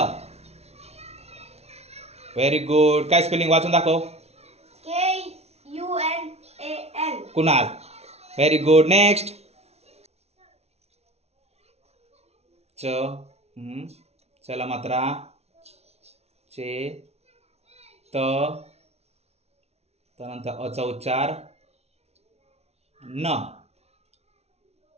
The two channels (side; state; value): left; late; 0.31 ms